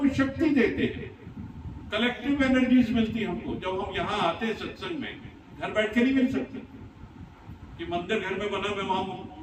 शक्ति देते हैं, कलेक्टिव एनर्जीज मिलती है हमको। जब हम यहाँ आते हैं सत्संग में, घर बैठ के नहीं मिल सकते कि मंदिर घर में बना, मैं वहां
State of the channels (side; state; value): both; identical; correlation 1.00